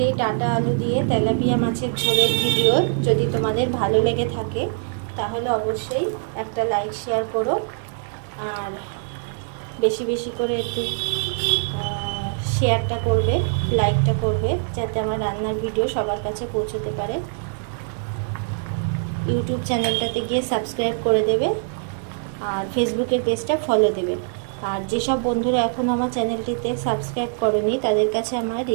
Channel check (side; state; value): left; silent; 60 dB below the other